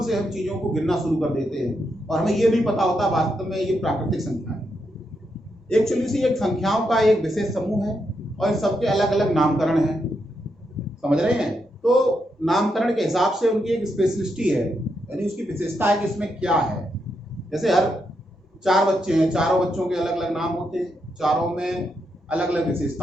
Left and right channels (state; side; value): normal; both; correlation 0.82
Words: से हम चीजों को गिनना शुरू कर देते हैं और हमें ये नहीं पता होता वास्तव में ये प्राकृतिक संख्या है। एक्चुअली से एक संख्याओं का एक विशेष समूह है और सबके अलग अलग नामकरण हैं, समझ रहे हैं? तो नामकरण के हिसाब से उनकी एक स्पेशलिस्टी है, यानी उसकी विशेषता है कि इसमें क्या है। जैसे हर 4 बच्चे हैं, चारों बच्चों के अलग अलग नाम होते हैं, चारों में अलग अलग